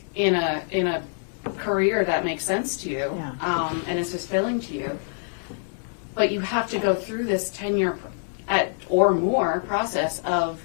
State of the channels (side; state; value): right; silent; 62 dB below the other